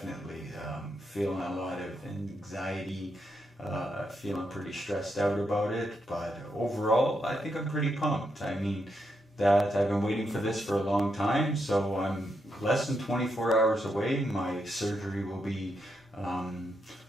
Feeling a lot of anxiety, feeling pretty stressed out about it, but overall I think I'm pretty pumped. I mean, that I've been waiting for this for a long time, so I'm less than 24 hours away. My surgery will be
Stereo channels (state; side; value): normal; both; correlation 0.81